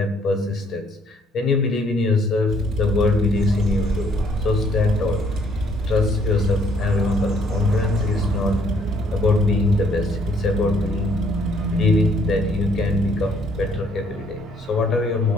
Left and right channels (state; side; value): normal; both; correlation 0.65